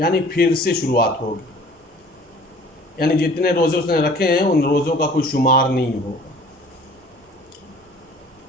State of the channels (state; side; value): normal; both; correlation 0.49